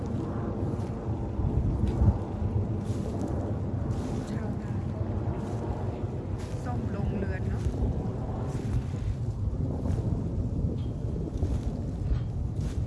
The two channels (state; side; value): identical; both; correlation 1.00